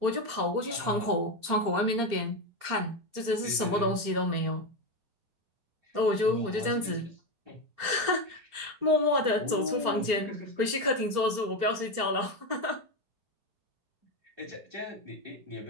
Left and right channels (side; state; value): left; late; 4.3 ms